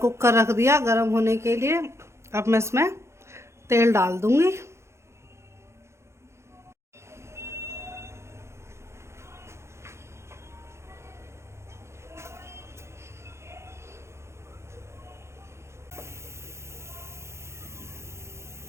रख दिया गर्म होने के लिए। अब मैं इसमें तेल डाल दूंगी।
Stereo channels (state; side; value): late; left; 0.13 ms